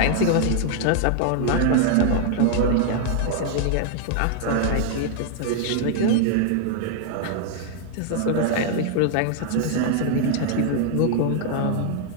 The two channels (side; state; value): both; different; correlation 0.00